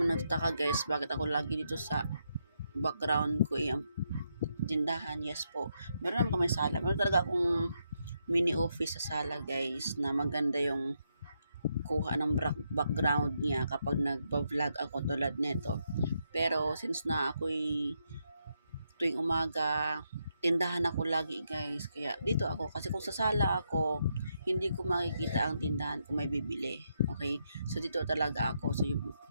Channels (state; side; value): inverted; both; correlation -0.80